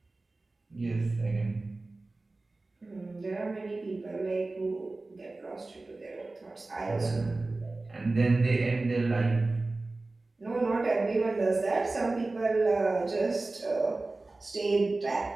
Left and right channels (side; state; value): left; quieter; 3.2 dB